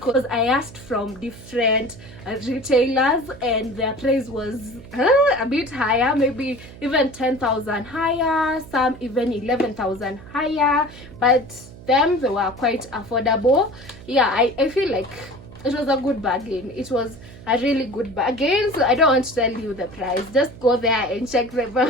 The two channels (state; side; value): noise; right; hum, 18 dB below the sound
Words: I asked from different retailers and their price was a bit higher, maybe even 10,000 higher, some even 11,000 higher, but them, they were quite affordable. Yeah, I feel like it was a good bargain. It was a really good bargain. So I don't want to tell you the price. Just go there and check them